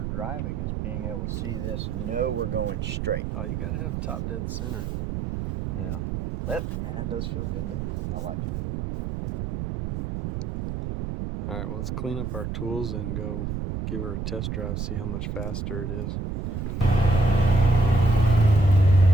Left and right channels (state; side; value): noise; right; rumble, 3 dB below the sound